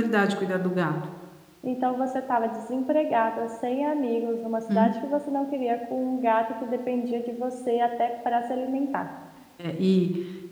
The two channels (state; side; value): identical; both; correlation 1.00